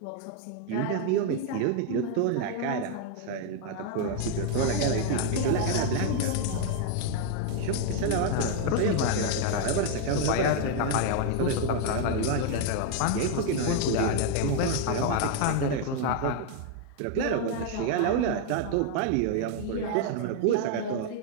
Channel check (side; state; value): both; different; correlation 0.00